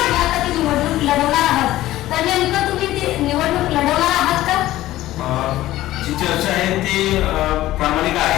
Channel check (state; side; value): quieter; right; 15.4 dB